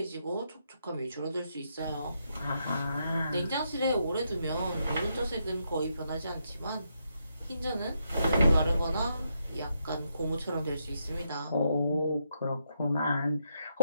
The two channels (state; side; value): inverted; both; correlation -0.80